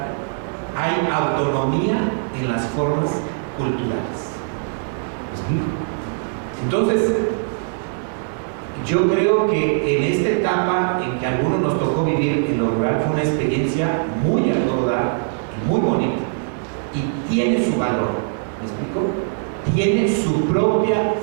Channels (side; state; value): left; silent; digital silence